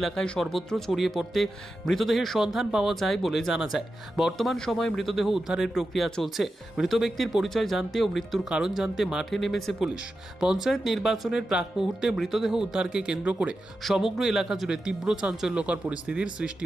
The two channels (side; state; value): both; normal; correlation 0.91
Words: সর্বত্র ছড়িয়ে পড়তে মৃতদেহের সন্ধান পাওয়া যায় বলে জানা যায়। বর্তমান সময়ে মৃতদেহ উদ্ধারের প্রক্রিয়া চলছে। মৃত ব্যক্তির পরিচয় জানতে ও মৃত্যুর কারণ জানতে মাঠে নেমেছে পুলিশ। পঞ্চায়েত নির্বাচনের প্রাক মুহূর্তে মৃতদেহ উদ্ধারকে কেন্দ্র করে সমগ্র এলাকা জুড়ে তীব্র চাঞ্চল্যকর পরিস্থিতির সৃষ্টি